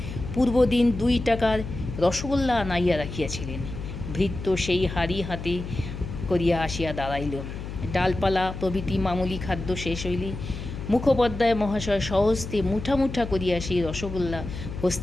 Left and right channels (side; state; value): left; noise; hum, 8 dB below the sound